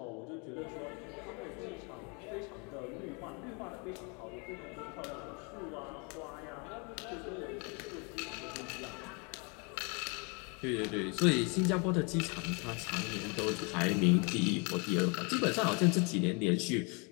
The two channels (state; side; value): quieter; right; 32.2 dB